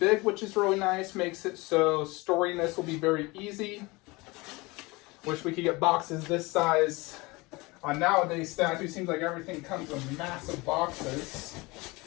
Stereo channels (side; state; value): right; quieter; 23.9 dB